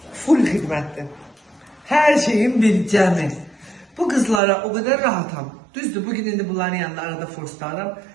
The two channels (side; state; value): left; drops out; at 4.4 s